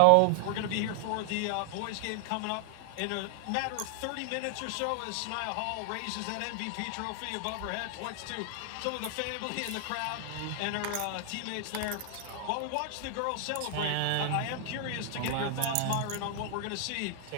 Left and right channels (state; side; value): different; both; correlation 0.00